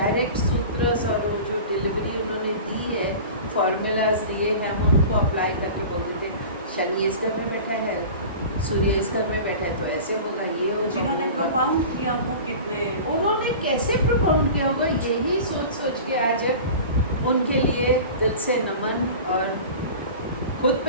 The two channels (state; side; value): inverted; both; correlation -0.36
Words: सूत्रस और वो जो डिलीवरी उन्होंने दी है, फॉर्मूलाज दिए हैं, हम उनको अप्लाई करके बोलते थे शनि इस घर में बैठा है, सूर्य इस घर में बैठा है तो ऐसे होगा, ये होगा। जिन्होंने प्रोपाउंड किया वो कितने, उन्होंने कैसे प्रोपाउंड किया होगा, यही सोच सोच के आज उनके लिए दिल से नमन और खुद